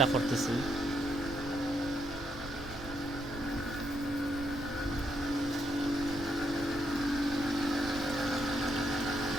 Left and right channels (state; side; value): noise; right; rumble, 12 dB below the sound